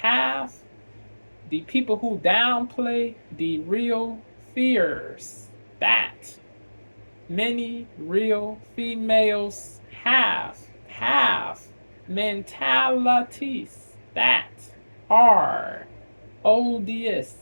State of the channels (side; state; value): both; inverted; correlation -1.00